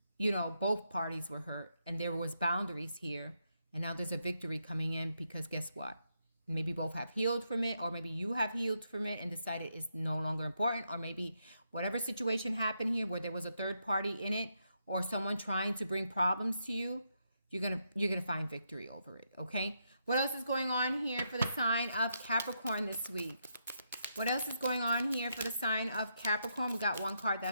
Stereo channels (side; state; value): both; inverted; correlation -0.80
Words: you know, both parties were hurt and there was boundaries here. And now there's a victory coming in because guess what? Maybe both have healed from it, or maybe you have healed from it and decided it's no longer important, or maybe whatever situation happened here where there was a third party in it or someone trying to bring problems to you, you're gonna find victory over it, okay? What else is going on here for the sign of Capricorn this week? What else is going on here for the sign of Capricorn? We got one card